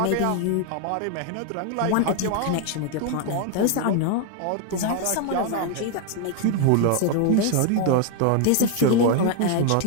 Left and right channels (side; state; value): both; different; correlation 0.01